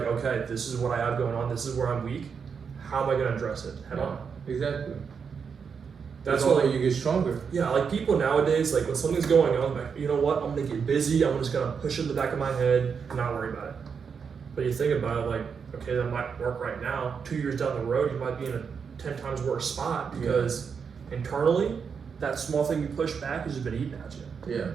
okay, this is what I have going on. This is where I'm weak. how am I going to address it head on? Exactly. That's why why you get stronger. Yeah, like people nowadays, like when something's going on, like, you know what, I'm gonna get busy, I'm just gonna push it in the back of my head and not worry about it. But you think about it, like, okay, that might work right now. 2 years down the road, you might be in a 10 times worse spot because internally, that small thing you push back has just been eating at you. Yeah.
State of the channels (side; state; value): left; quieter; 6.2 dB